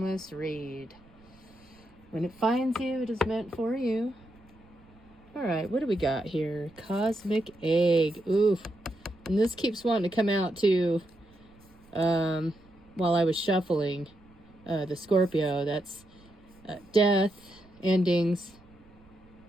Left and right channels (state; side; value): noise; right; rumble, 27 dB below the sound